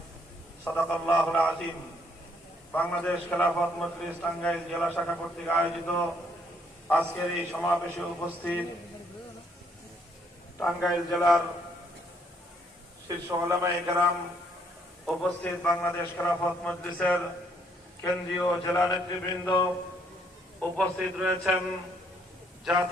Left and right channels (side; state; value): both; normal; correlation 0.69